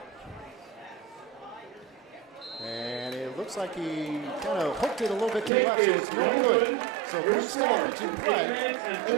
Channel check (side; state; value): left; drops out; at 5.5 s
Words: And it looks like he kind of hooked it a little bit to the left, so it's no good. So quick stoppage in play.